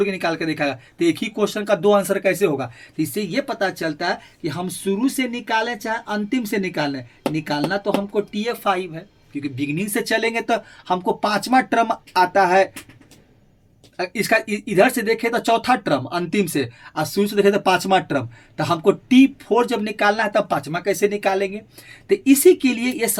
के निकाल के दिखाएगा, तो एक ही क्वेश्चन का 2 आंसर कैसे होगा। तो इससे ये पता चलता है कि हम शुरू से निकालें चाहे अंतिम से निकालें, निकालना तो हमको TF5 है, क्योंकि बिगनिंग से चलेंगे तो हमको 5वां टर्म आता है। इसका इधर से देखें तो चौथा टर्म अंतिम से, और शुरू से देखें तो 5वां टर्म, तो हमको T4 जब निकालना है तब 5वां कैसे निकालेंगे। तो इसी के लिए ये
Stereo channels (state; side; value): identical; both; correlation 1.00